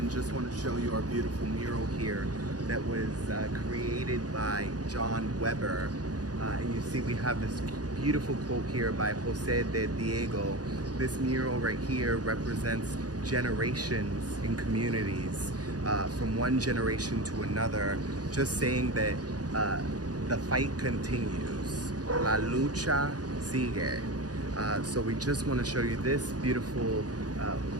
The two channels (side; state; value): left; late; 0.68 ms